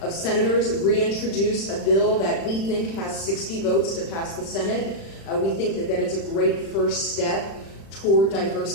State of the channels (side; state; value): right; late; 36 ms